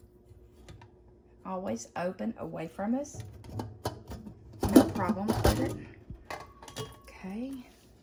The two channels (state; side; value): identical; both; correlation 1.00